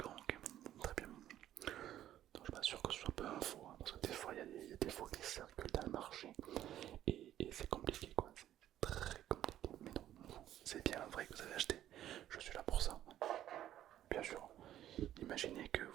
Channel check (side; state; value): left; quieter; 12.2 dB